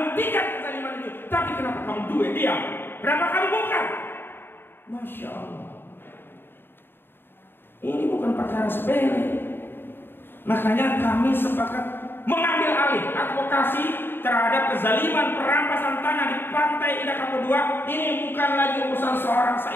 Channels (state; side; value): late; right; 0.10 ms